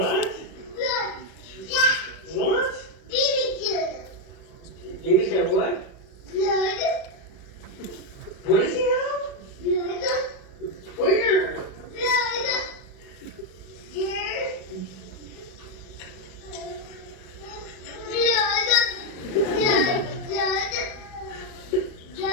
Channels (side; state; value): right; late; 37 ms